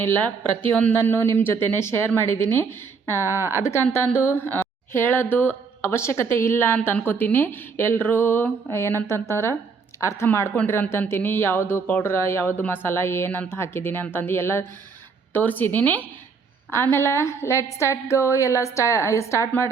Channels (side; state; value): left; quieter; 5.3 dB